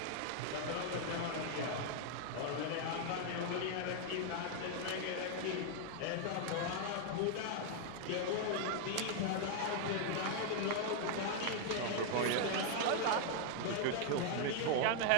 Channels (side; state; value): both; different; correlation 0.00